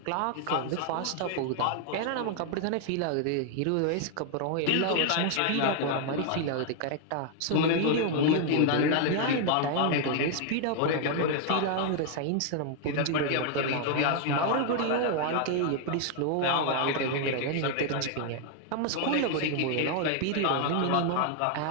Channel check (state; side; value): different; both; correlation 0.00